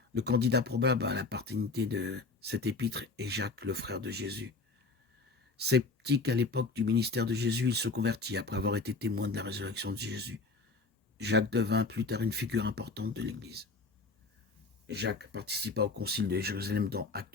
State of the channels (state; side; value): quieter; right; 3.9 dB